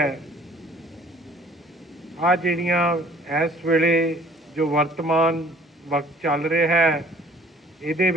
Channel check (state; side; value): normal; both; correlation 0.54